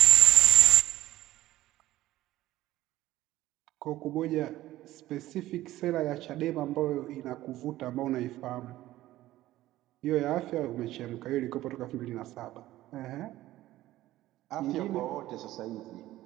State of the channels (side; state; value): left; quieter; 15.5 dB